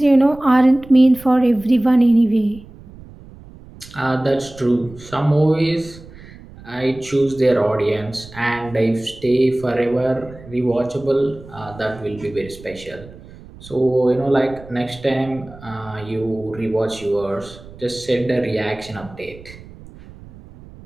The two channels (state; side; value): noise; right; rumble, 19 dB below the sound